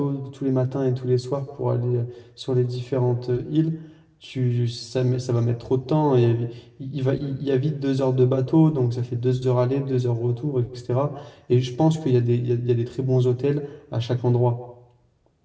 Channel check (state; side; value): identical; both; correlation 1.00